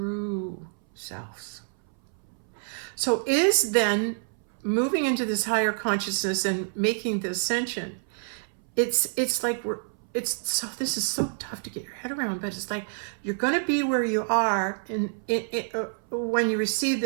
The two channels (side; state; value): left; silent; 60 dB below the other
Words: selves. So is then moving into this higher consciousness and making the ascension, it's like this is so tough to get your head around, but it's like you're going to be where you are when you receive